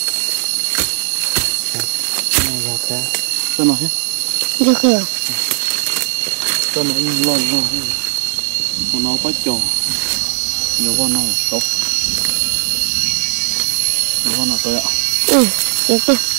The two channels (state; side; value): silent; left; 64 dB below the other